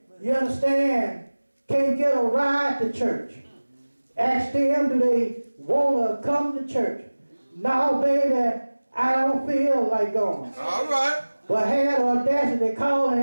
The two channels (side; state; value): both; inverted; correlation -1.00